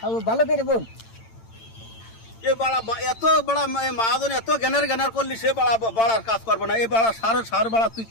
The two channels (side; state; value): right; late; 8.9 ms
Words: ভালো করে বোন এ বাড়া এত বড় মহাজন এত জ্ঞানের করলি সে বাড়ার কাজ করবে না এই বাড়া সার বাড়া তুই